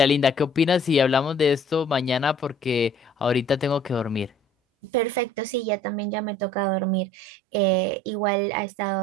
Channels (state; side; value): drops out; left; at 5.7 s